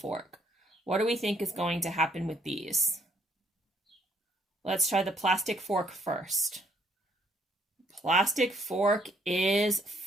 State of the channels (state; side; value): normal; both; correlation 0.68